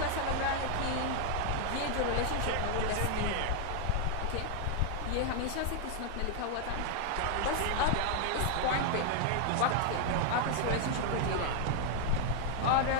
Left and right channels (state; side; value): different; both; correlation 0.00